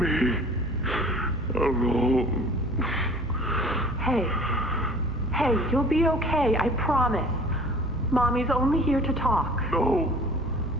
alone. Hey, you'll be okay, I promise. Mommy's only here to talk. No,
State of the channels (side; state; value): both; normal; correlation 0.46